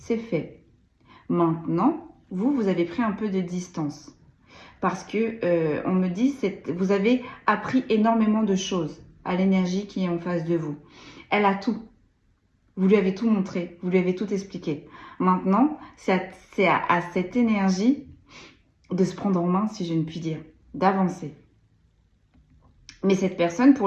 fait. Maintenant, vous avez pris un peu de distance. Parce que on me dit, vous avez appris énormément de choses à l'énergie qui est en face de vous. Elle a tout. Vous lui avez tout montré, vous lui avez tout expliqué. Maintenant, c'est à cette énergie de se prendre en main, si je ne puis dire, d'avancer. Mais cette personne,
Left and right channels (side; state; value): both; identical; correlation 1.00